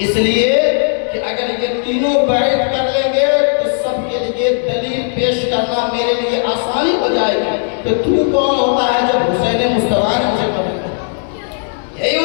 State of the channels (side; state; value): right; silent; digital silence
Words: اس لیے کہ اگر یہ تینوں بیعت کر لیں گے تو سب کے لیے دلیل پیش کرنا میرے لیے آسانی ہو جائے گی. تو تو کون ہوتا ہے جب حسین مصطفیٰ نے مجھے قبول کیا؟ یہی